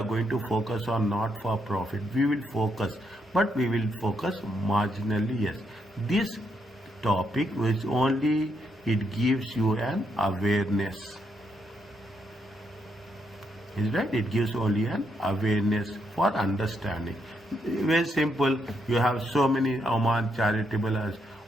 going to focus on not for profit. We will focus, but we will focus marginally, yes. This topic which only it gives you an awareness. Is right? It gives only an awareness for understanding. Very simple. You have so many Oman charitable,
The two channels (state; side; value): normal; both; correlation 0.78